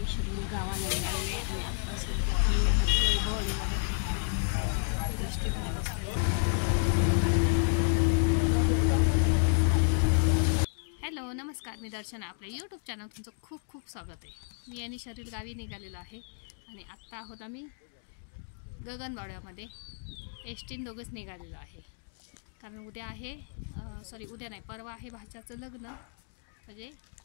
शरीर गावाला निघालेले आणि आता सध्या हॅलो नमस्कार, मी दर्शना. आपल्या यूट्यूब चॅनल तुमचं खूप खूप स्वागत आहे. मी आणि शरीर गावी निघालेलो आहे आणि आत्ता आहोत आम्ही गगनबावड्यामध्ये. एसटीन दोघंच निघालेलो आहे कारण उद्या आहे उद्या नाही, परवा आहे भाच्याचं लग्न, म्हणजे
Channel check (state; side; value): silent; right; digital silence